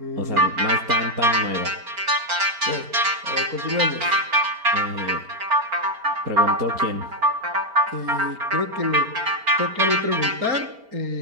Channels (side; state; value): left; late; 4.4 ms